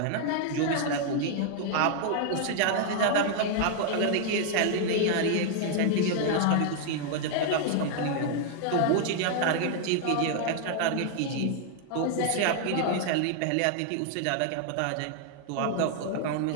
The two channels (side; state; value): both; different; correlation 0.00